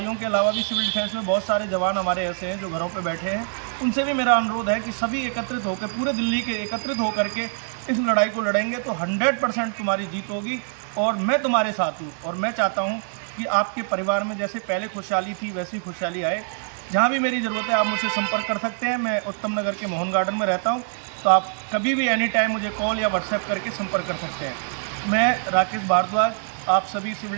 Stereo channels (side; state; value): left; silent; 60 dB below the other